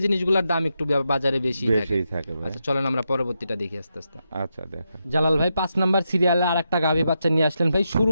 জিনিসগুলোর দাম একটু বাজারে বেশি থাকে। বেশিই থাকে ভাই। আচ্ছা চলেন আমরা পরবর্তীটা দেখি আস্তে আস্তে। আচ্ছা দেখা। জালাল ভাই 5 নাম্বার সিরিয়ালে আর একটা গাভী বাচ্চা নিয়ে আসলেন ভাই।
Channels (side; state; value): both; inverted; correlation -0.85